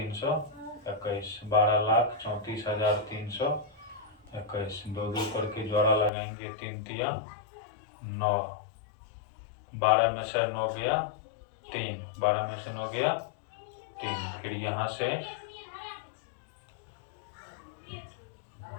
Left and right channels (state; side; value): drops out; right; at 6.1 s